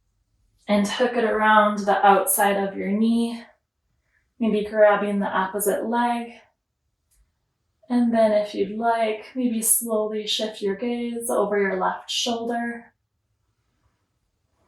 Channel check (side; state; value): both; identical; correlation 1.00